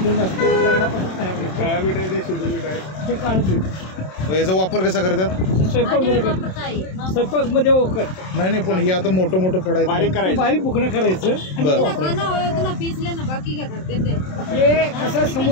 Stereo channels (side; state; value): right; late; 27 ms